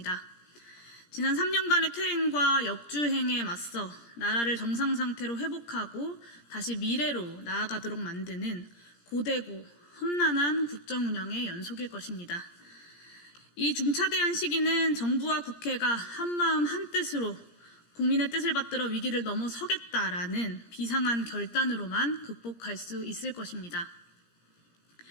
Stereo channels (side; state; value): right; late; 17 ms